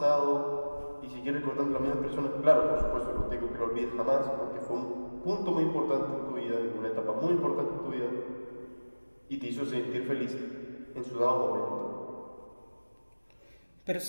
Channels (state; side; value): inverted; both; correlation -1.00